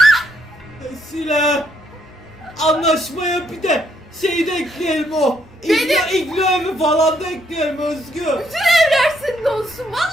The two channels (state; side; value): normal; both; correlation 0.73